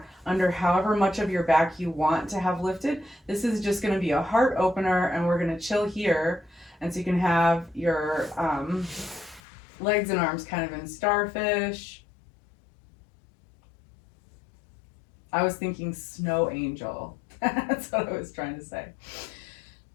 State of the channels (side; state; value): right; drops out; at 9.4 s